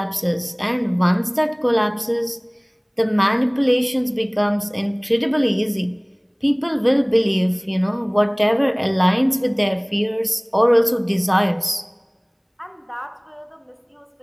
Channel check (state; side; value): identical; both; correlation 1.00